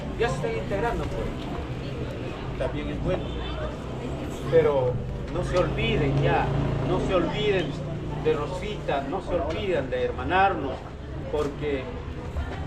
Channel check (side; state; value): both; identical; correlation 1.00